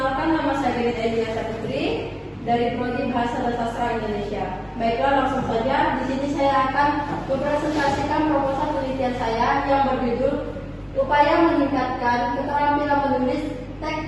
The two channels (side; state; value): both; identical; correlation 1.00